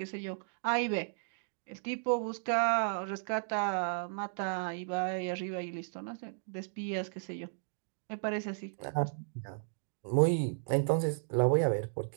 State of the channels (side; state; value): left; silent; digital silence